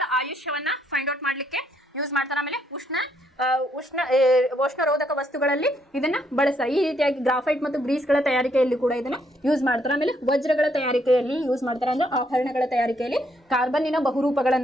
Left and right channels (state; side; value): normal; both; correlation 0.72